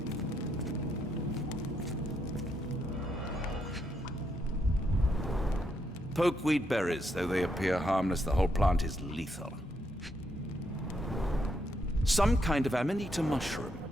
Pokeweed berries, though they appear harmless, the whole plant is lethal. Some kind of Amanita mushroom,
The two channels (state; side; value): normal; both; correlation 0.78